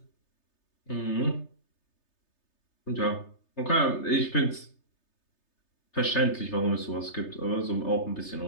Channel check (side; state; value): right; late; 3.3 ms